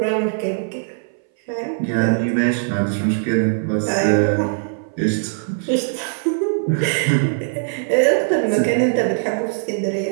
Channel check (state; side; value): silent; left; 60 dB below the other